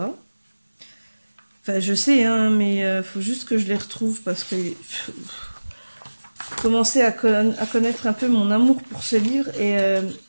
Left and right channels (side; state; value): both; inverted; correlation -1.00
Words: Enfin, je sais, hein, mais faut juste que je les retrouve parce que commencer à connaître un peu mon amour pour ce livre. Et